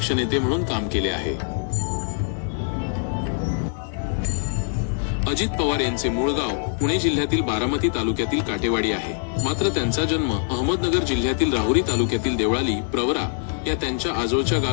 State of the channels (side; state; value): right; silent; 63 dB below the other